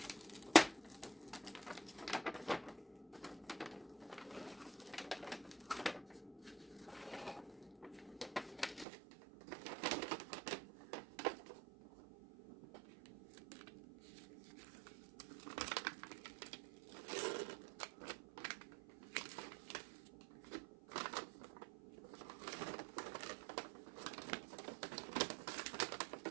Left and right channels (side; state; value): left; drops out; at 8.8 s